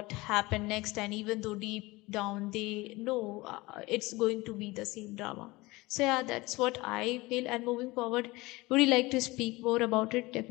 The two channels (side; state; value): right; quieter; 21.7 dB